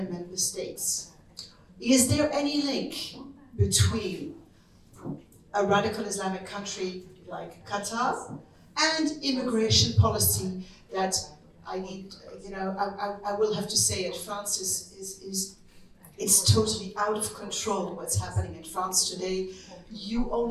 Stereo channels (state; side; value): identical; both; correlation 1.00